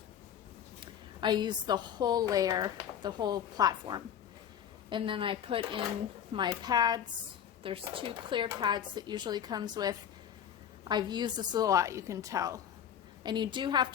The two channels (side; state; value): right; quieter; 9.0 dB